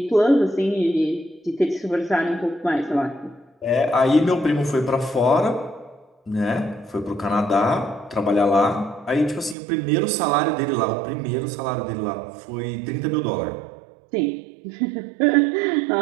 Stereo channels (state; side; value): drops out; left; at 9.6 s